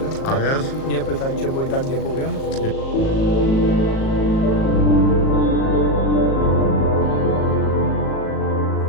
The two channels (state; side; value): late; right; 37 ms